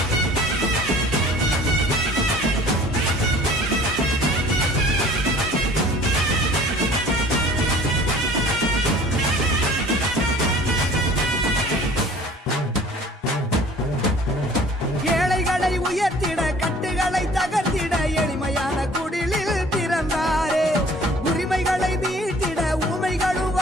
உயர்த்திட கட்டுகளை தகர்த்திட எளிமையான குடிலில் பிறந்தாரே. உரிமைகளை மீட்டிட ஊமைகளும்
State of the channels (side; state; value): both; normal; correlation 0.50